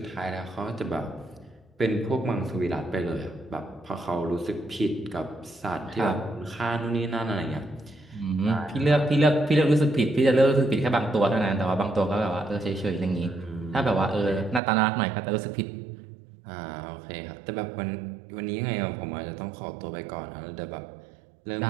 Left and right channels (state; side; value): drops out; left; at 14.6 s